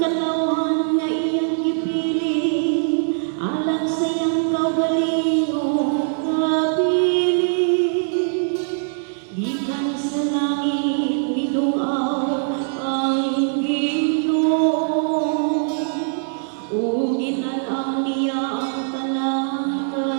kalauhan nga iyang gipili, alang sa iyang kaugalingong kapili. Gikan sa langit midungaw ang Ginoo, ug ginanaw niya ang tanang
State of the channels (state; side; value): silent; left; digital silence